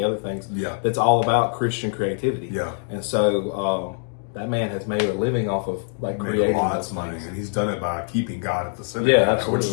other things. Yeah. That's all about Christian creativity. Yeah. And so that man has made a living off of like creating lots of money, and he's done it by keeping God at the center. Yeah, absolutely. Which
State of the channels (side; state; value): right; silent; 63 dB below the other